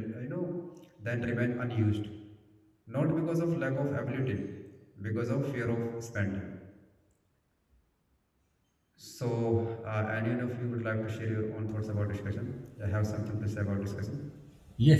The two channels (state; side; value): identical; both; correlation 1.00